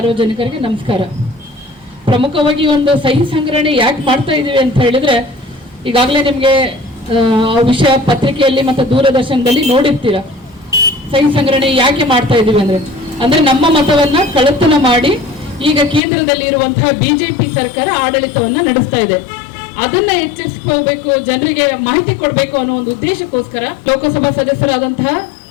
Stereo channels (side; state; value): right; drops out; at 16.0 s